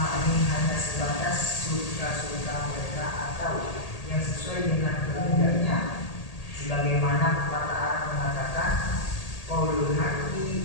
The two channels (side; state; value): right; late; 1.8 ms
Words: hanya sebatas suka-suka mereka atau yang sesuai dengan kehendaknya, sebagaimana pepatah Arab mengatakan qaulul haqqi